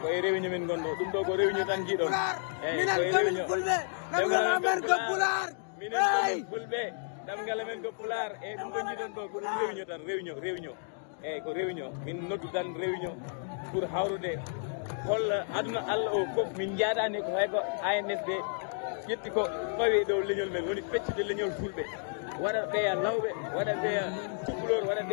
koye réunion min gonɗo ɗum ɗo ko réunion tan jiiɗon eyyi koye réunion ɗemgal amen ko pular minen komin fulɓe ɗemgal amen ko pular eyyi ɗum ko jiiɗon ɗo ko ɗum réunion tan réunion eyyi ko réunion min noddu tan réunion pour hawrude holla aduna Allah o foof min jaadani ko hay ko ANSD ƴetti ko fawi dow leñol men woni feccude leñol fulɓe waɗa ɓeya lawɓe waɗa ɓeya cukalor waɗa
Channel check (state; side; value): silent; right; digital silence